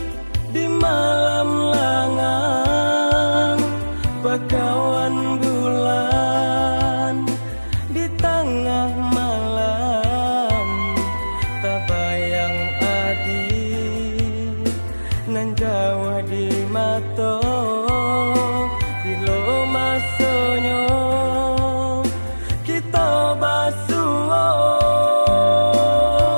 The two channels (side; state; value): both; inverted; correlation -1.00